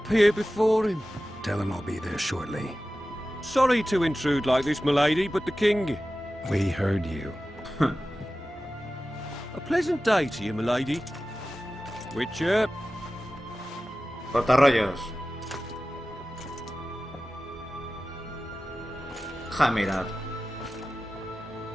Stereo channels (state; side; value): normal; both; correlation 0.95